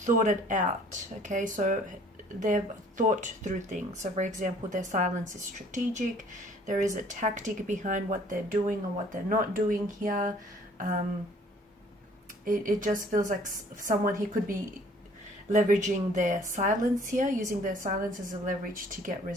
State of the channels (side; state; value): both; normal; correlation 0.56